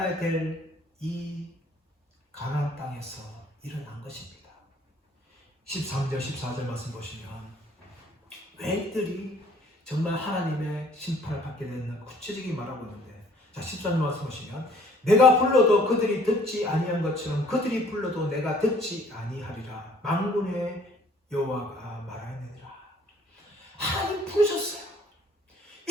될 이 가나안 땅에서 일어난 것입니다. 13절 14절 말씀 보시면 왜 이들이 정말 하나님의 심판을 받게 됐나 구체적인 말하고 있는데 자 13절 말씀 보시면 내가 불러도 그들이 듣지 아니한 것처럼 그들이 불러도 내가 듣지 아니하리라 만군의 여호와가 말하느니라. 하나님 부르셨어요.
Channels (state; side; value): normal; both; correlation 0.58